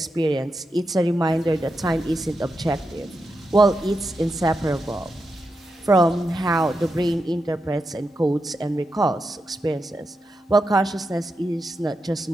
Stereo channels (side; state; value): both; normal; correlation 0.87